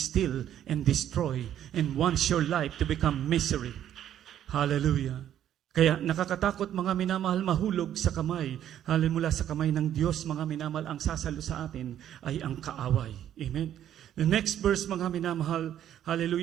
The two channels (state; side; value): quieter; left; 10.8 dB